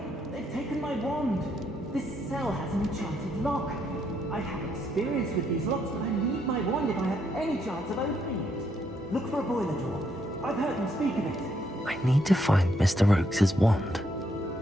They've taken my wand. This cell has an enchanted lock. I have experience with these locks, but I need my wand if I have any chance of opening it. Look for a boiler door. I've heard them speak of it. I need to find Mr. Oakes' wand.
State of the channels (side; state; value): both; normal; correlation 0.75